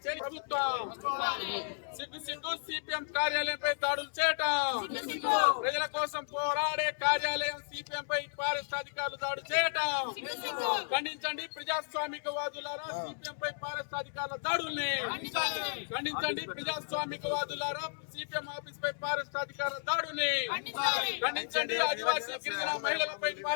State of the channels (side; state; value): right; silent; digital silence